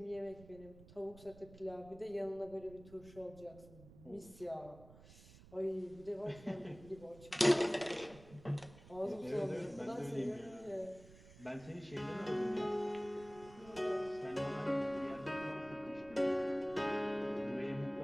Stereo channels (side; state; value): right; noise; rumble, 19 dB below the sound